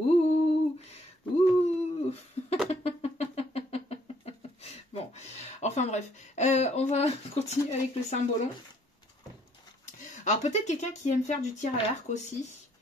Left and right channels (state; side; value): normal; both; correlation 0.66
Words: Ouh. Bon. Enfin bref. On va continuer avec le symbolon. Alors peut-être quelqu'un qui aime faire du tir à l'arc aussi.